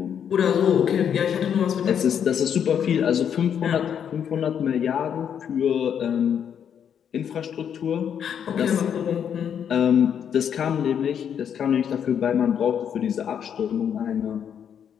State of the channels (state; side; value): quieter; right; 8.4 dB